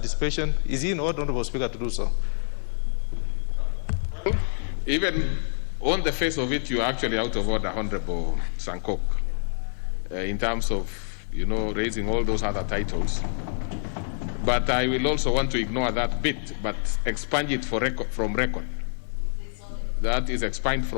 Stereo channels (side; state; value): right; silent; 61 dB below the other